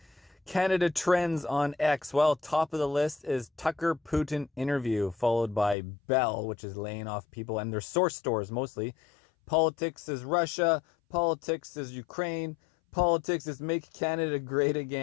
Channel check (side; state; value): right; drops out; at 5.8 s